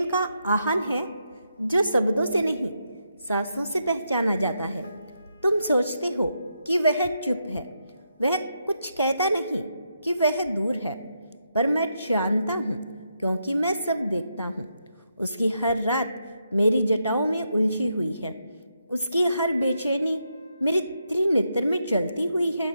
का आह्वान है जो शब्दों से नहीं, सांसों से पहचाना जाता है। तुम सोचते हो कि वह चुप है, वह कुछ कहता नहीं, कि वह दूर है, पर मैं जानता हूँ, क्योंकि मैं सब देखता हूँ। उसकी हर रात मेरी जटाओं में उलझी हुई है, उसकी हर बेचैनी मेरे त्रिनेत्र में जलती हुई है।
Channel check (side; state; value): both; inverted; correlation -0.82